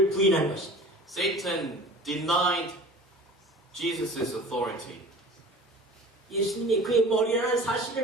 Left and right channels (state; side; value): normal; both; correlation 0.42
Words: 부인한 것입니다. Satan denied Jesus' authority. 예수님이 그의 머리라는